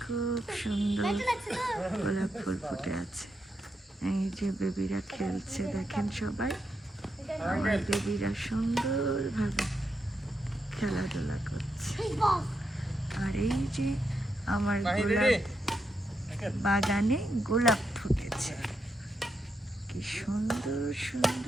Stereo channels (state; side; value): normal; both; correlation 0.83